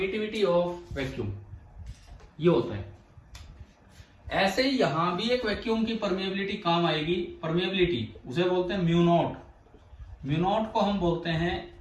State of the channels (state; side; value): identical; both; correlation 1.00